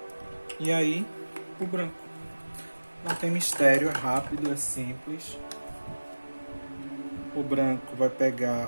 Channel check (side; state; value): both; inverted; correlation -1.00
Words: E aí, o branco. Não tem mistério, é rápido, é simples. O branco vai